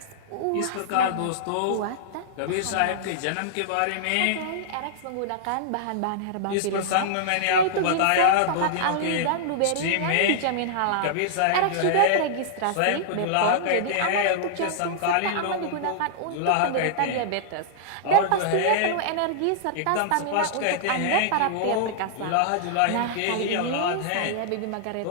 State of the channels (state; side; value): different; both; correlation -0.02